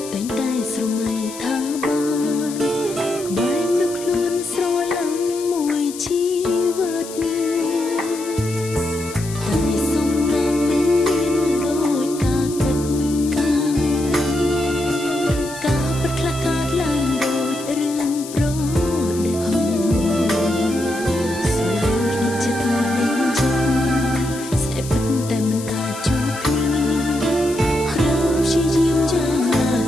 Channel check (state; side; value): noise; left; hiss, 13 dB below the sound